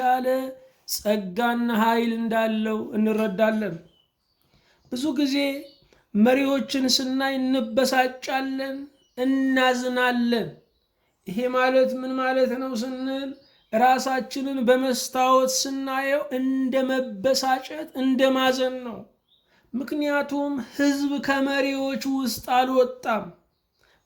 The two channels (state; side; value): identical; both; correlation 1.00